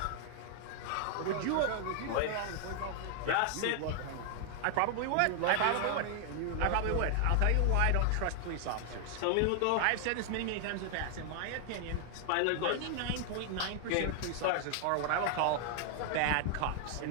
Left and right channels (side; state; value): both; different; correlation 0.00